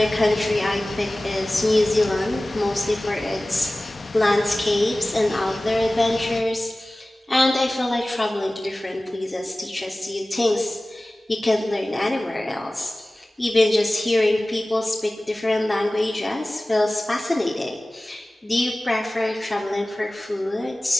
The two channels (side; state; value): both; normal; correlation 0.98